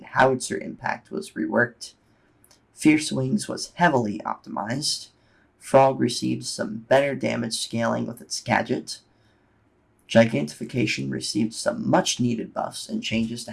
howitzer impact was reworked. Fierce Wings was heavily optimized. Frog received some better damage scaling with its gadget. Gigantification received some much needed buffs and changes to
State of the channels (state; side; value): identical; both; correlation 1.00